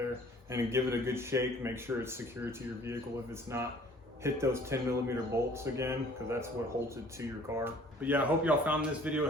and then give it a good shake. Make sure it's secured to your vehicle. If it's not, hit those 10mm bolts again, because that's what holds it to your car. But yeah, I hope y'all found this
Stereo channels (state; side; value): normal; both; correlation 0.53